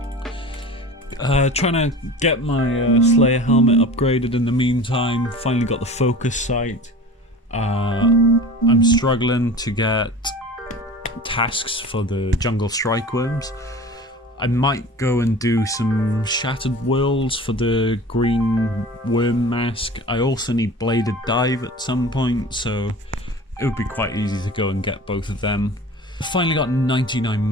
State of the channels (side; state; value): both; normal; correlation 0.38